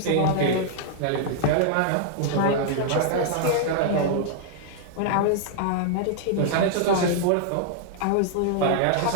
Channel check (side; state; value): both; different; correlation -0.01